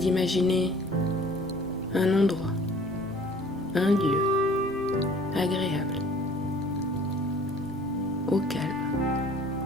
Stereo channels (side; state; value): both; normal; correlation 0.51